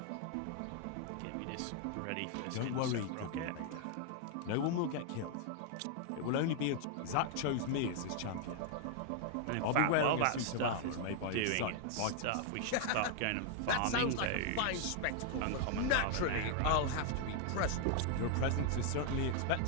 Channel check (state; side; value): different; both; correlation 0.00